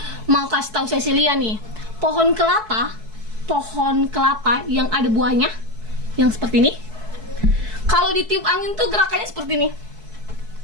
kasih tahu Cecilia nih, pohon kelapa yang ada buahnya, yang seperti ini. Kalau ditiup angin tuh gerakannya seperti ini.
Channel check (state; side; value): late; left; 4.6 ms